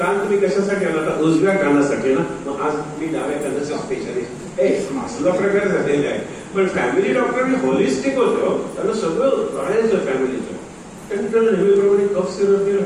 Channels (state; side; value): identical; both; correlation 1.00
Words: तुम्ही कशासाठी आला? आता उजव्या कानासाठी ना, मग आज मी डाव्या कानाचा स्पेशालिस्ट. असला प्रकार झालेला आहे. पण फॅमिली डॉक्टर होलिस्टिक होतं, त्यांना सगळं कळायचं फॅमिलीचं. त्यांनी त्याला नेहमीप्रमाणे कफ सिरप दिलं.